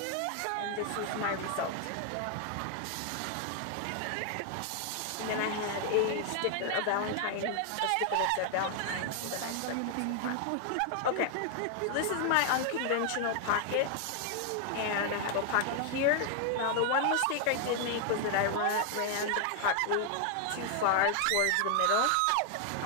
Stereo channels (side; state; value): both; different; correlation 0.00